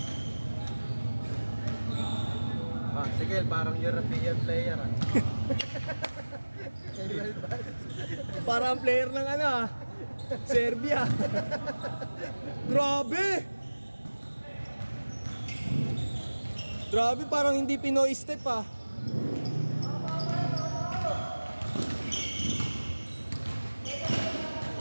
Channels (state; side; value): inverted; both; correlation -1.00